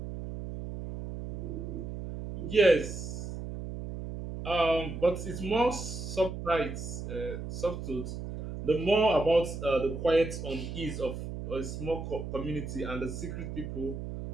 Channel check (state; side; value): noise; right; hum, 7 dB below the sound